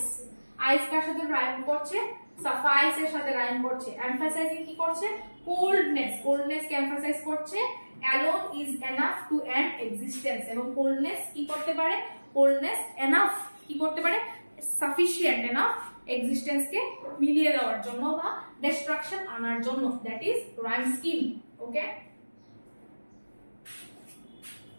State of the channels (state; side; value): inverted; both; correlation -1.00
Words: আইস কার সাথে রাইম করছে? সাফাইস এর সাথে রাইম করছে। এমফাসাইজিং কি করছে? কোল্ডনেস কে এমফাসাইজ করছে। Alone is enough to end existence, এবং কোল্ডনেস কি করতে পারে? কোল্ডনেস এনাফ কি করতে পারে? সাফিশিয়েন্ট এনাফ এক্সিস্টেন্স কে মিলিয়ে দেওয়ার জন্য বা ডিস্ট্রাকশন আনার জন্য। That is rhyme scheme. Okay,